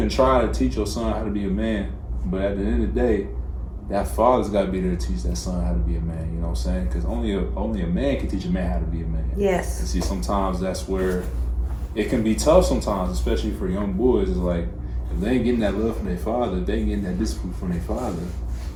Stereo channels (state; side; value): identical; both; correlation 1.00